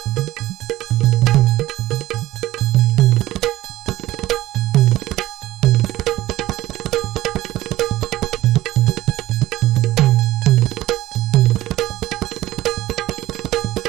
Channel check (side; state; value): left; quieter; 15.8 dB